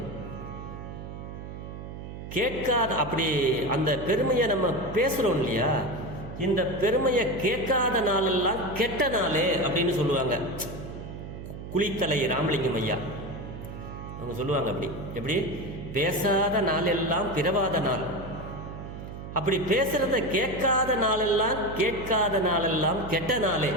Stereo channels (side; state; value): right; noise; hum, 10 dB below the sound